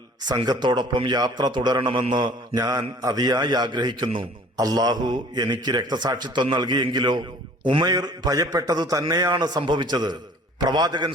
സംഘത്തോടൊപ്പം യാത്ര തുടരണമെന്ന് ഞാൻ അതിയായി ആഗ്രഹിക്കുന്നു. അള്ളാഹു എനിക്ക് രക്തസാക്ഷിത്വം നൽകിയെങ്കിലോ? ഉമൈർ ഭയപ്പെട്ടതു തന്നെയാണ് സംഭവിച്ചത്. പ്രവാചകൻ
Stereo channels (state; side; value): normal; both; correlation 0.50